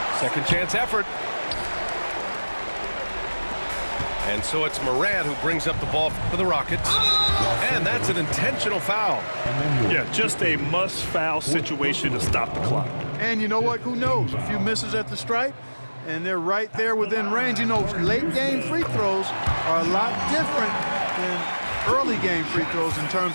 Second chance effort. And so it's Morant who brings up the ball for the Rockets. And that's an intentional foul. Yeah, just a must-foul situation to stop the clock. And you know what? Who knows? A few misses at the stripe, and they're right there within range. You know, late-game free throws are a lot different than early-game free throws in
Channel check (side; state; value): both; inverted; correlation -1.00